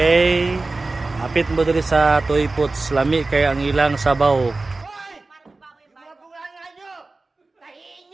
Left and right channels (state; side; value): quieter; left; 3.4 dB